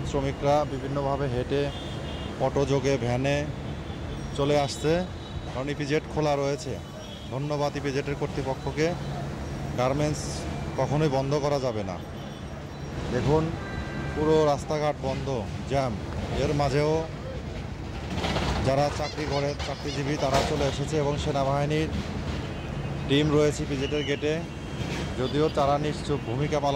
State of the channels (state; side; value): identical; both; correlation 1.00